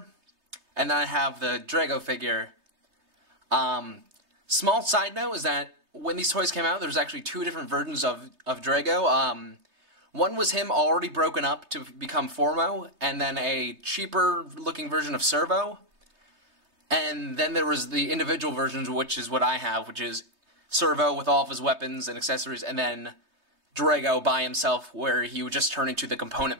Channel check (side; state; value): left; late; 3.2 ms